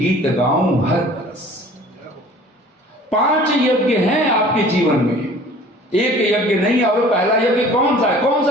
गाऊं हर बरस। 5 यज्ञ हैं आपके जीवन में, एक यज्ञ नहीं। और पहला यज्ञ कौन सा है? कौन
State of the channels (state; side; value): normal; both; correlation 0.48